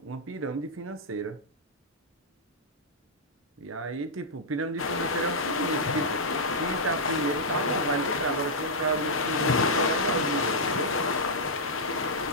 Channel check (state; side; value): normal; both; correlation -0.08